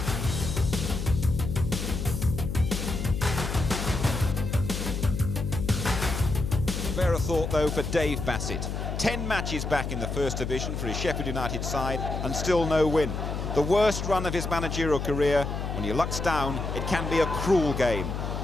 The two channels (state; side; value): noise; left; hum, 4 dB below the sound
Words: Spare a thought though for Dave Bassett. 10 matches back in the First Division for his Sheffield United side and still no win. The worst run of his managerial career. When your luck's down, it can be a cruel game.